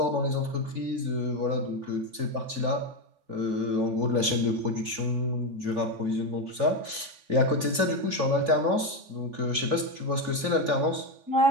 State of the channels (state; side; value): late; left; 3.5 ms